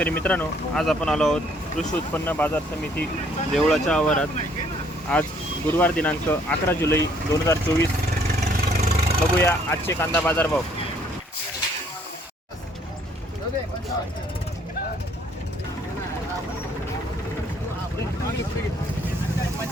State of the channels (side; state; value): both; normal; correlation 0.63